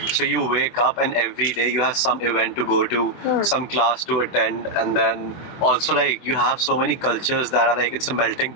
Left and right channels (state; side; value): late; right; 24 ms